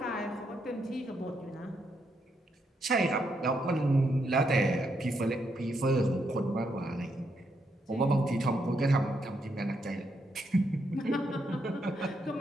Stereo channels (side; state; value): both; normal; correlation 0.78